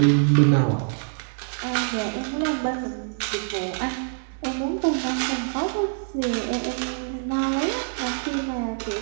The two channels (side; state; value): left; silent; digital silence